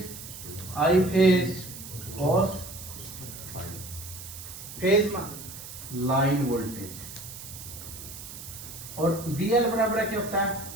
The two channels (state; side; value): noise; right; hiss, 12 dB below the sound